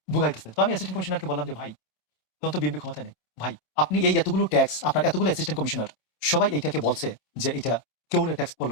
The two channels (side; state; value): right; late; 27 ms